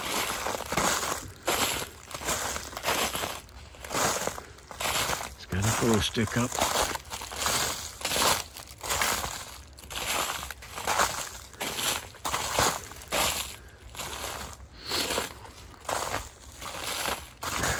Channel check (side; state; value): both; identical; correlation 1.00